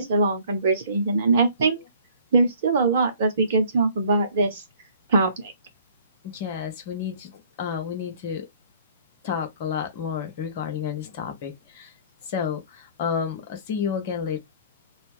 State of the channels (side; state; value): both; inverted; correlation -0.55